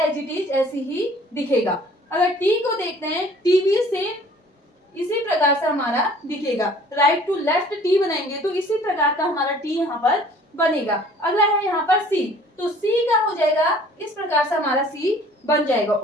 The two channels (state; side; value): normal; both; correlation 0.52